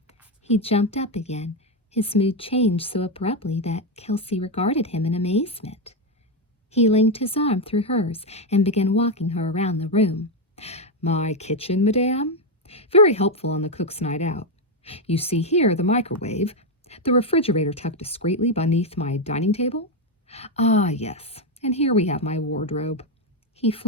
He jumped up again. His mood changed so abruptly that Kelsey regarded him in amazement. He linked his arm through hers and began walking her around the room. "My kitchen, madame? Very helpful on the cook's night out. You see here the microwave, the refrigerator tucked discreetly beneath my dining table. Ah, yes, and here we have my wardrobe." He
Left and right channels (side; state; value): both; normal; correlation 0.06